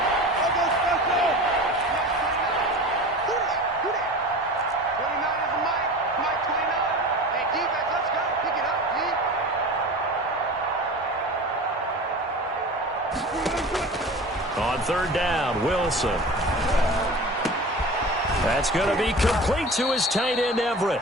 On 3rd down, Wilson. That's going to be complete to his tight end, Everett.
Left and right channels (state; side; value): normal; both; correlation 0.35